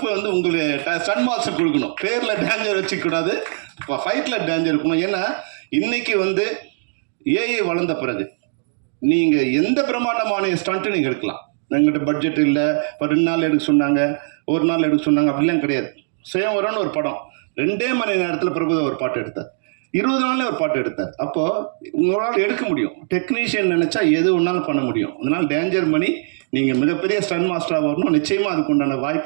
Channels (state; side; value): silent; left; digital silence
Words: வந்து உங்களுக்கு சன் மாஸ்டர் கொடுக்கணும். பேரில் டேஞ்சர் வச்சுக்கூடாது, இப்போ ஃபைட்டில் டேஞ்சர் இருக்கணும். ஏன்னா இன்றைக்கி வந்து ஏஐ வளர்ந்த பிறகு நீங்கள் எந்த பிரம்மாண்டமான ஸ்டண்ட்டு நீங்கள் எடுக்கலாம். எங்கிட்ட பட்ஜெட் இல்லை, இப்போ 2 நாள் எடுக்க சொன்னாங்க, 1 நாள் எடுக்க சொன்னாங்க, அப்படிலாம் கிடையாது. சுயம்வரம்னு ஒரு படம் 2 மணி நேரத்தில் பிரபுதா ஒரு பாட்டு எடுத்தார், 20 நாள்லேயே ஒரு பாட்டு எடுத்தார். அப்போது உங்களால் எடுக்க முடியும், டெக்னீஷியன் நினச்சா எது ஒன்றாலும் பண்ண முடியும். அதனால் டேஞ்சர் மணி, நீங்கள் மிகப்பெரிய ஸ்டன் மாஸ்டராக வரணும், நிச்சயமாக அதுக்கு உண்டான